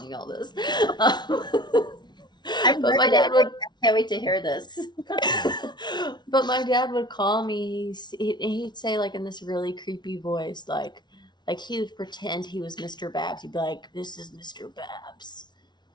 y'all this. I've But read my it. dad would. I can't wait to hear this. But my dad would call me. He'd say like in this really creepy voice, like he would pretend he was Mr. Babs. He'd be like, "This is Mr. Babs.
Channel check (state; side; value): late; right; 0.20 ms